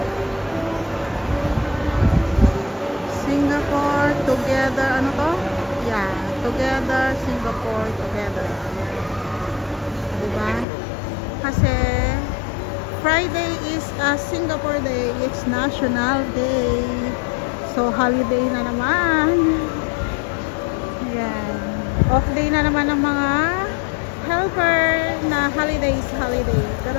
Singapore together, ano to? Yeah, together, Singapore together. Diba? Kasi Friday is a Singapore Day. It's National Day. So, holiday na naman. Yan. Off day na naman ng mga helper na holiday. Pero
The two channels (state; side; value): drops out; right; at 10.7 s